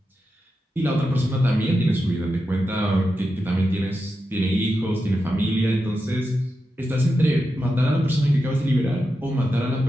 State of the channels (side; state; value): both; normal; correlation 0.89